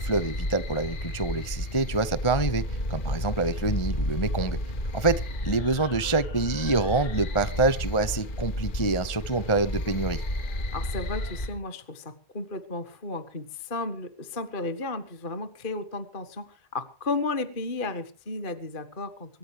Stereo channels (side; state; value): right; late; 1.4 ms